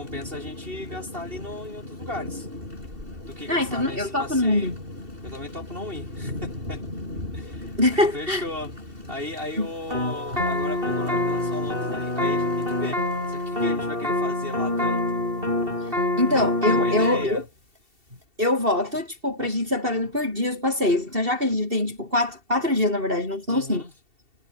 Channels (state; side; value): late; left; 2.7 ms